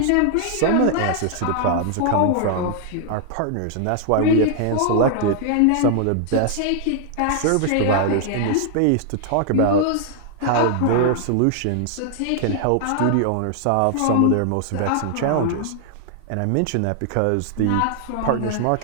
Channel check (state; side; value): different; both; correlation 0.00